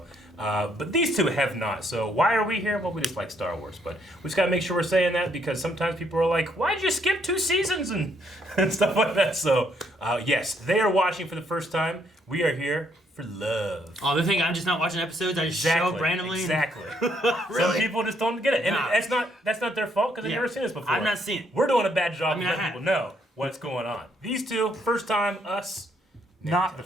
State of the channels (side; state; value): both; normal; correlation 0.71